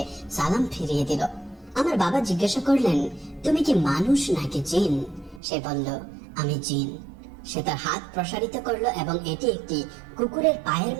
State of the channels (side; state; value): left; drops out; at 5.4 s